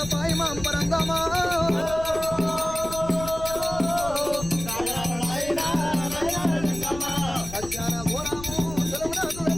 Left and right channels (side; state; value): left; noise; rumble, 12 dB below the sound